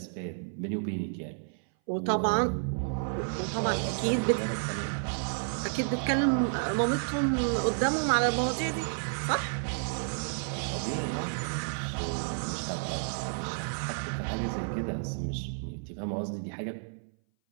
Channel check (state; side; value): silent; left; 57 dB below the other